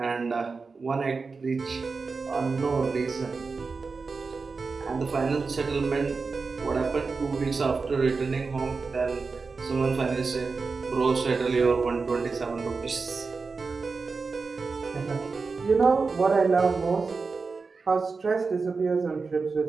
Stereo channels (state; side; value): quieter; left; 4.5 dB